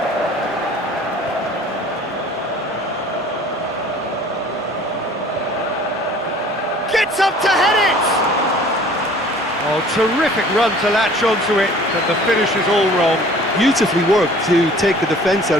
Gets up to head it! Oh, terrific run to latch onto it, but the finish is all wrong. Beautifully worked to take the defence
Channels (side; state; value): both; normal; correlation 0.50